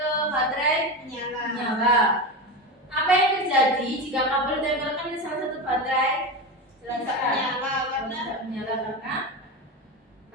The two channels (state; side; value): normal; both; correlation 0.20